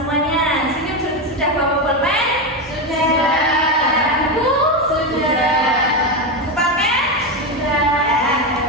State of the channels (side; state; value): both; normal; correlation 0.12